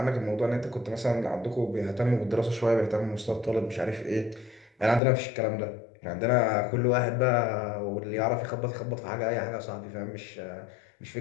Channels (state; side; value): drops out; right; at 5.0 s